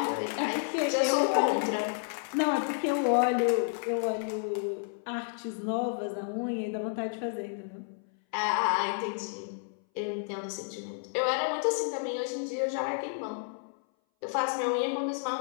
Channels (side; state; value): right; silent; 57 dB below the other